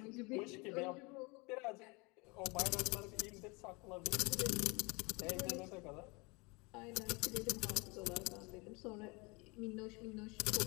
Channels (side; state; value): right; quieter; 27.5 dB